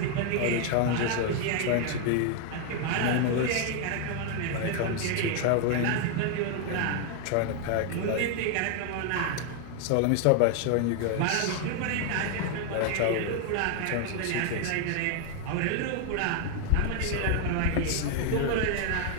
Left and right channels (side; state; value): both; different; correlation 0.01